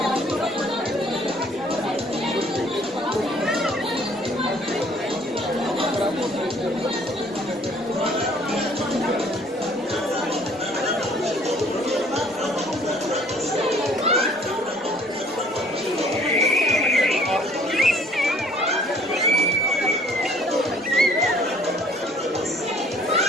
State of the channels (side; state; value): both; normal; correlation 0.57